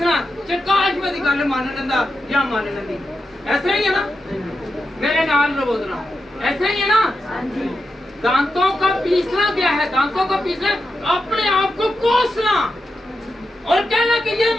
काश मेरी गल मान लेंदा या मान लेंदी। ऐसा ही है ना, मेरे नाल बोलना, ऐसा ही है ना। दांतों का पीसना क्या है? दांतों का पीसना अपने आप को कोसना और कहना कि ये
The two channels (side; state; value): both; normal; correlation 0.88